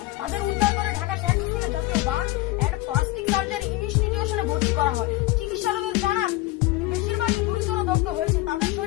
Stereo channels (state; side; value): quieter; right; 18.3 dB